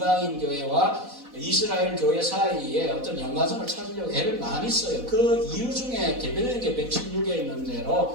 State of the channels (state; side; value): late; left; 4.1 ms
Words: 교회와 이스라엘 교회 사이에 어떤 연관성을 찾으려고 애를 많이 써요. 그 이유 중에 대표적인 게 116에 있는